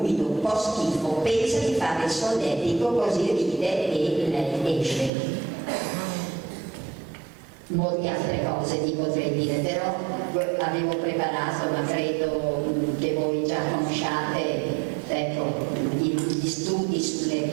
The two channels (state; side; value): drops out; left; at 5.1 s